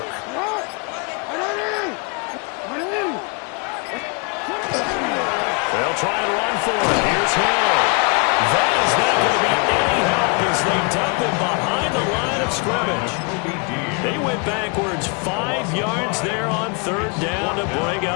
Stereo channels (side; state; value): right; quieter; 33.7 dB